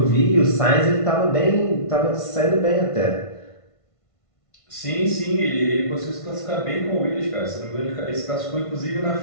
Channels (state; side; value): late; right; 1.5 ms